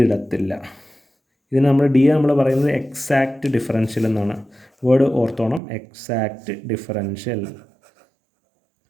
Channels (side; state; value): left; drops out; at 5.6 s